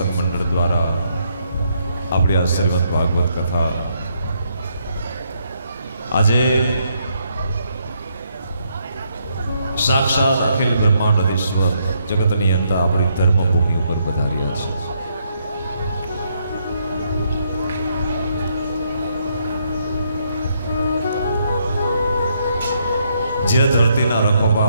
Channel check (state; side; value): inverted; both; correlation -0.75